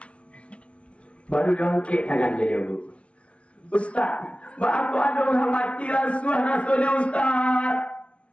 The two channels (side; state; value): right; late; 0.061 ms